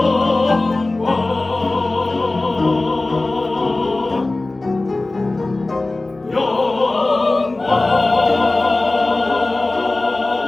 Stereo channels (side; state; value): right; quieter; 3.0 dB